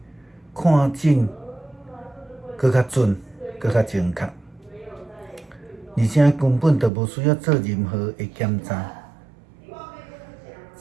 看诊搁较准，搁较精确，而且根本就无需要做任何的检查。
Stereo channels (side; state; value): left; drops out; at 6.9 s